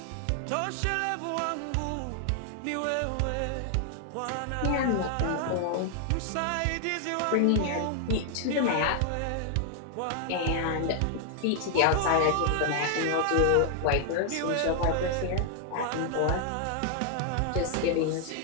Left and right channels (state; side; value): different; both; correlation 0.00